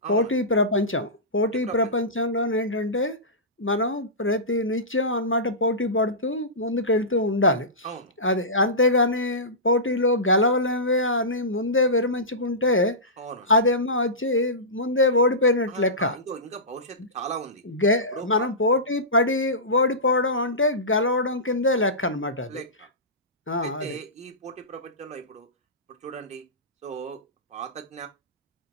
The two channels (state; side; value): normal; both; correlation -0.19